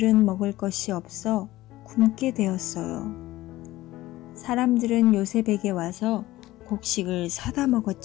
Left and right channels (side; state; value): right; quieter; 16.9 dB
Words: 먹을 것이 없어 굶게 되었어요. 사람들은 요셉에게 와서 곡식을 사다